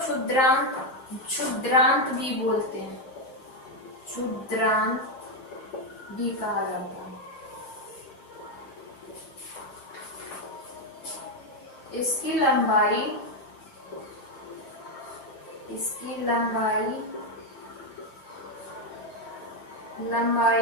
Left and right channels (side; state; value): right; late; 7.5 ms